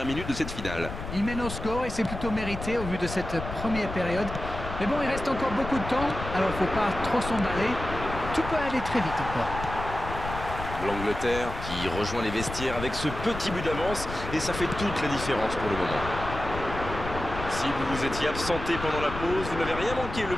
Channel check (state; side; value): noise; left; rumble, 8 dB below the sound